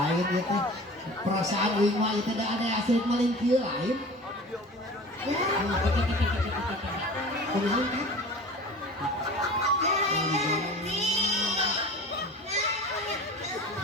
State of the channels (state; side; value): normal; both; correlation 0.39